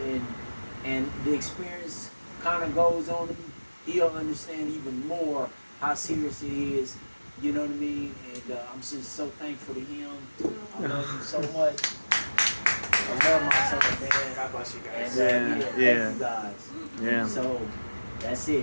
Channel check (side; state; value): both; inverted; correlation -1.00